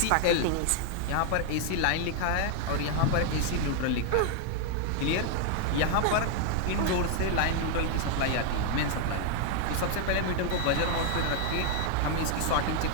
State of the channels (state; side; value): different; both; correlation 0.00